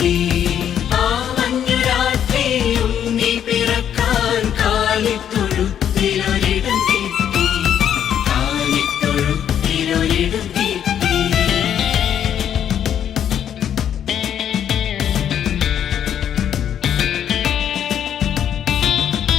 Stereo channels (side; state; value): right; quieter; 9.5 dB